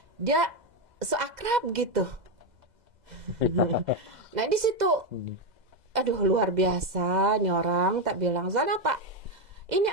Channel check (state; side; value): late; left; 2.0 ms